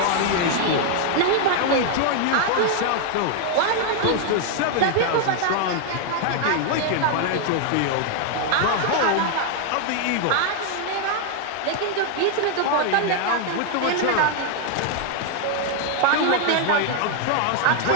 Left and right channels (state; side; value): different; both; correlation 0.00